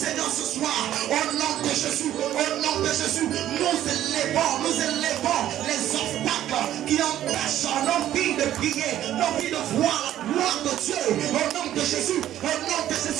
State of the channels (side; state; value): left; quieter; 12.2 dB